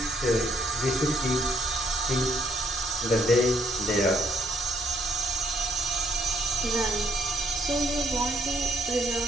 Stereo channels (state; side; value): normal; both; correlation 0.71